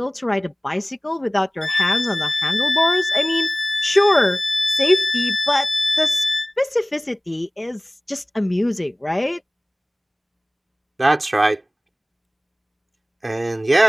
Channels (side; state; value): both; normal; correlation 0.98